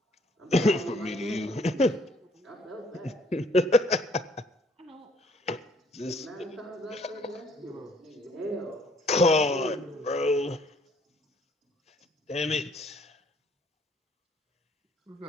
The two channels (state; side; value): normal; both; correlation 0.62